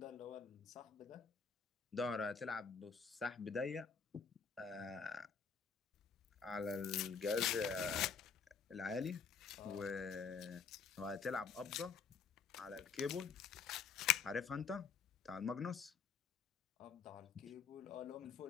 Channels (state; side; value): quieter; right; 6.0 dB